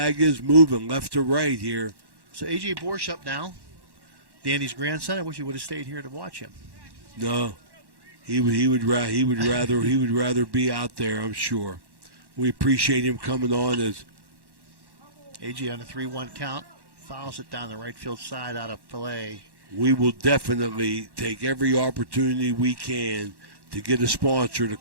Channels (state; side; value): late; left; 1.1 ms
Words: is moving left to right here. So A.J. Borsch up now, Danny's grandson. I wish he would have stayed here to watch him. No. He would rather be out there, I'm sure. We appreciate him coming on as AJ on a 3-1 count, fouls it down the right field side out of play. We will definitely take every opportunity we can to get a sponsor to